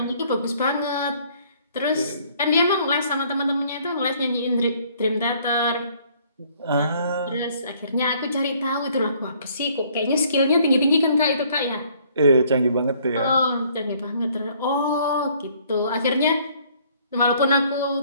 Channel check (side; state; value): both; inverted; correlation -0.61